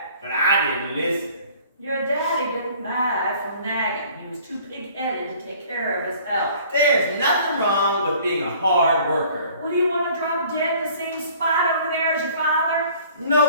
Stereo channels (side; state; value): both; inverted; correlation -0.52